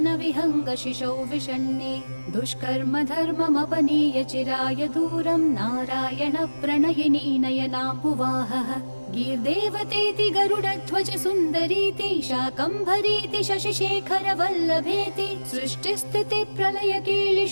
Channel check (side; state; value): both; inverted; correlation -1.00